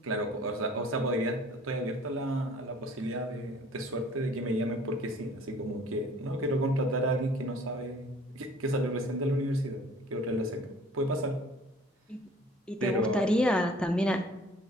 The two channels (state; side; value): normal; both; correlation 0.51